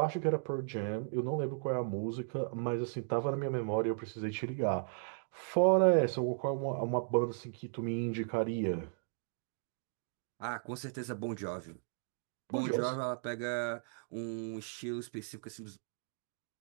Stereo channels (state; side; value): silent; left; digital silence